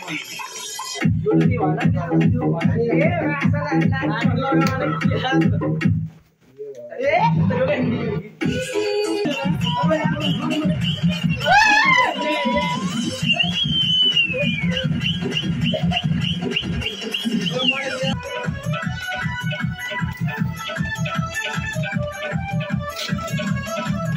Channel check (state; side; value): identical; both; correlation 1.00